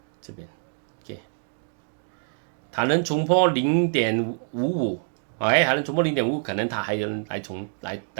這邊它能衝破0.55還能衝破0.55，可能它還能來衝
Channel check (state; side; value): silent; left; digital silence